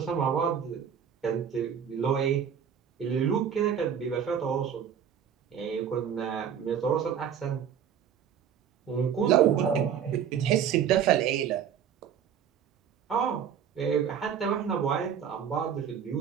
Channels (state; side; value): quieter; left; 8.2 dB